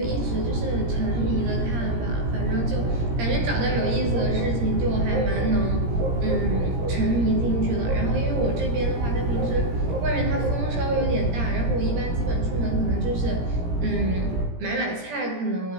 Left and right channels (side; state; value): left; late; 17 ms